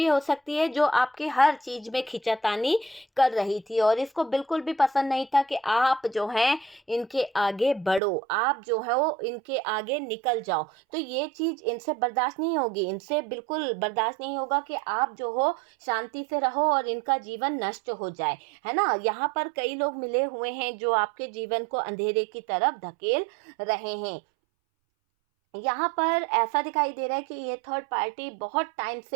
हो सकती है, जो आपके हर चीज़ में खींचातानी कर रही थी और इसको बिल्कुल भी पसंद नहीं था कि आप जो हैं इनके आगे बढ़ो, आप जो है वो इनके आगे निकल जाओ। तो ये चीज़ इनसे बर्दाश्त नहीं होगी, इनसे बिल्कुल बर्दाश्त नहीं होगा कि आप जो हो शांति से रहो और इनका जीवन नष्ट हो जाए, है ना। यहाँ पर कई लोग मिले हुए हैं जो आपके जीवन को अंधेरे की तरफ धकेल रहे हैं। यहाँ पर ऐसा दिखाई दे रहा है कि ये थर्ड पार्टी बहुत टाइम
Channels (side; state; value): left; drops out; at 8.0 s